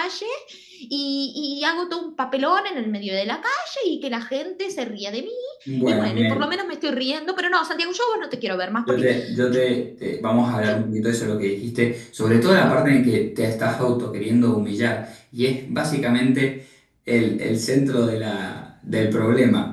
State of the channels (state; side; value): identical; both; correlation 1.00